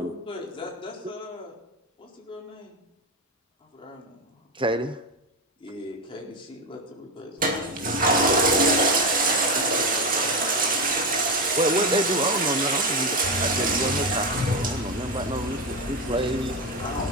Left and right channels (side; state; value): both; normal; correlation 0.13